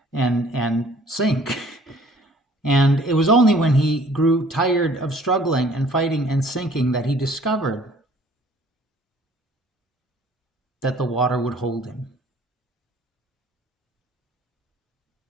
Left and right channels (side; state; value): both; normal; correlation 0.55